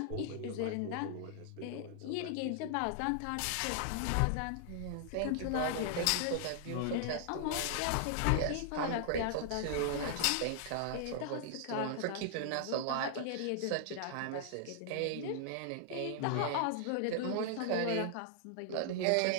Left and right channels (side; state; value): both; different; correlation -0.01